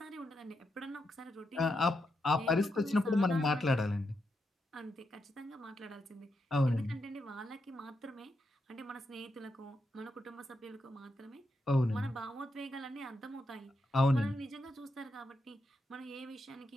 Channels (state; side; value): normal; both; correlation 0.83